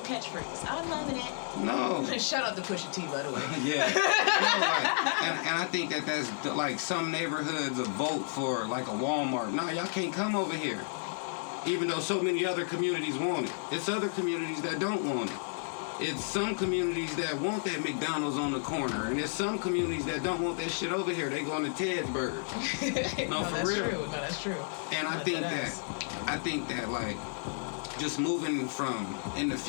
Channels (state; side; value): silent; right; digital silence